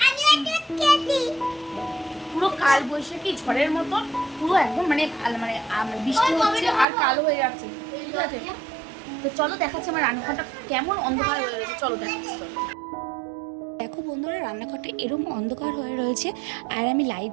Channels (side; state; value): left; drops out; at 6.9 s